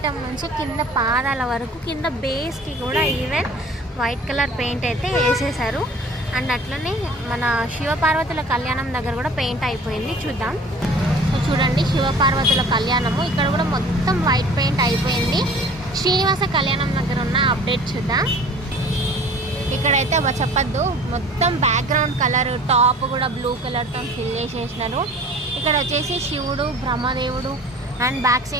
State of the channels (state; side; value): normal; both; correlation 0.47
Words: నుంచి కింద పాదాల వరకు కింద బేస్కి కూడా ఈవెన్ వైట్ కలర్ పెయింట్ అయితే వేసేసారు. అండ్ అట్లనే మన శివపార్వతుల కళ్యాణం దగ్గర కూడా పెయింట్ అయిపోయింది. చూద్దాం. సో చూడండి, శివపార్వతుల కళ్యాణము ఇక్కడ కూడా మొత్తం వైట్ పెయింట్ అయిపోయింది. శ్రీనివాస కళ్యాణం దగ్గర ఉన్న అప్డేట్ చూద్దాం. ఇక్కడైతే చెప్పద్దు, మొత్తం బ్యాక్గ్రౌండ్ కలర్ టాప్ కూడా బ్లూ కలర్తో ఫిల్ చేసేసినారు. ఇక్కడ వచ్చేసి శివుడు, బ్రహ్మదేవుడు అండ్ బ్యాక్